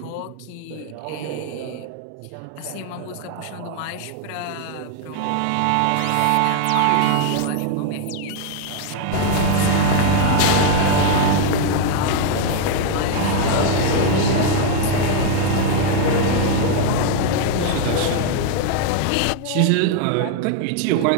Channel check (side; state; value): both; different; correlation 0.00